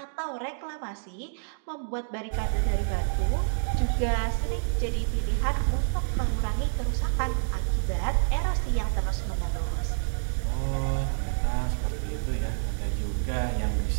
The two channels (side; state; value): left; silent; digital silence